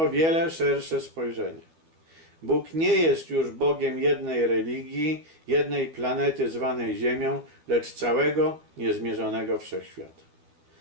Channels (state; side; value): late; left; 12 ms